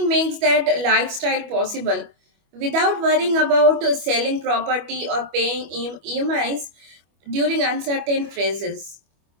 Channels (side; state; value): left; late; 25 ms